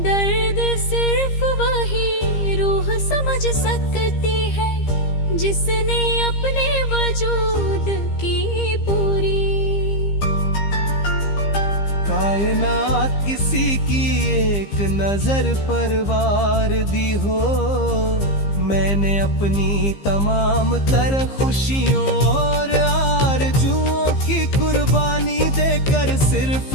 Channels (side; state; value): right; late; 15 ms